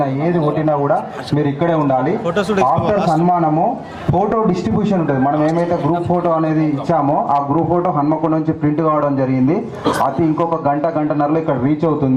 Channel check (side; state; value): both; identical; correlation 1.00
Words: ఏది కొట్టినా కూడా మీరు ఇక్కడే ఉండాలి. ఆఫ్టర్ సన్మానము ఫోటో డిస్ట్రిబ్యూషన్ ఉంటుంది. మనం ఏమైతే గ్రూప్ గ్రూప్ ఫోటో అనేది ఇచ్చామో ఆ గ్రూప్ ఫోటో హన్మకొండ నుంచి ప్రింట్ కావడం జరిగింది. అది ఇంకొక గంటన్నరలో ఇక్కడ రీచ్